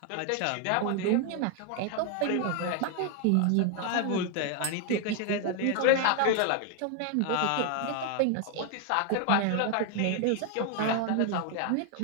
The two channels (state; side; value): different; both; correlation 0.00